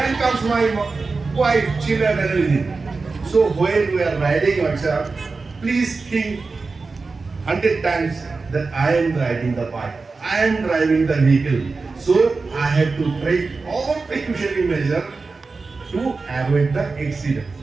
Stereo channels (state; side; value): quieter; left; 4.1 dB